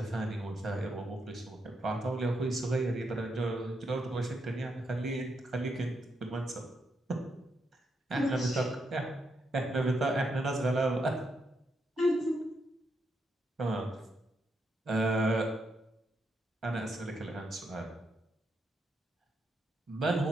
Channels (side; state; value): both; normal; correlation 0.80